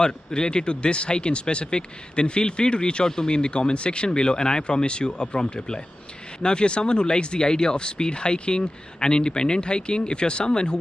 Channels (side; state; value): both; normal; correlation 0.94